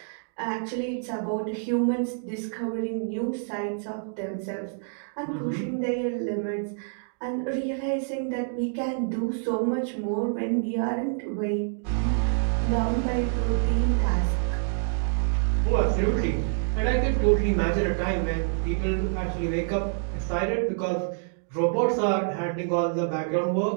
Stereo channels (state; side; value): silent; left; digital silence